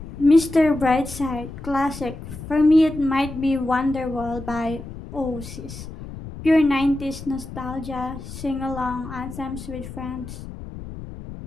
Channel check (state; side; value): noise; left; rumble, 12 dB below the sound